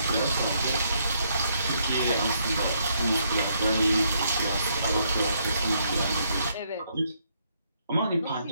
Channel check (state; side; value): inverted; both; correlation -0.73